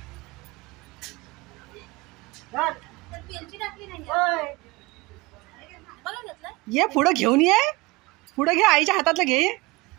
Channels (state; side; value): quieter; left; 23.1 dB